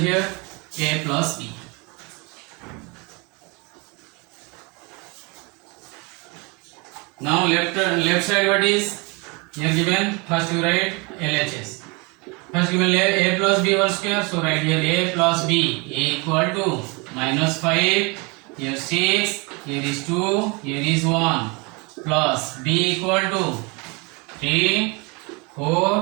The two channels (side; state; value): left; quieter; 29.1 dB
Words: a plus b. Now left side what is? Here given, first you write LHS. First given a plus b whole square, so write here a plus b, a equal to minus 5, here 6, here is 2, here is 1, plus b equal to 3,